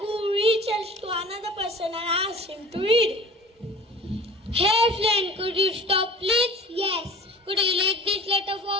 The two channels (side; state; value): both; normal; correlation 0.43